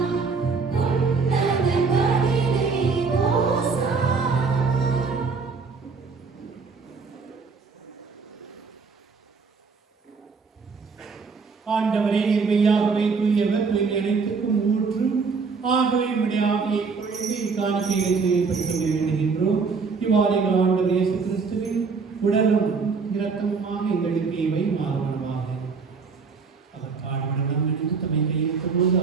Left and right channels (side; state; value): left; quieter; 4.9 dB